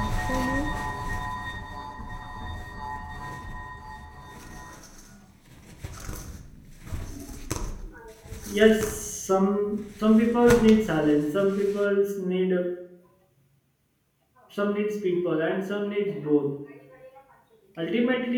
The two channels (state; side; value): identical; both; correlation 1.00